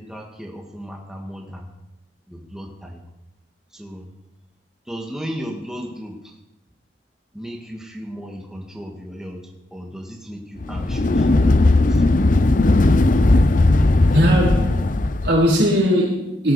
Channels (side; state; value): both; normal; correlation 0.82